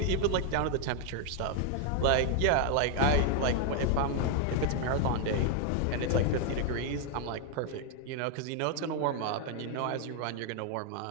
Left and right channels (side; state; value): both; different; correlation 0.00